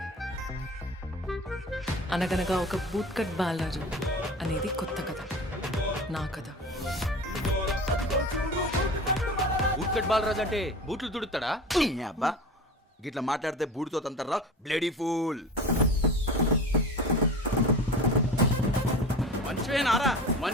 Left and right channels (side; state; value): both; normal; correlation 0.35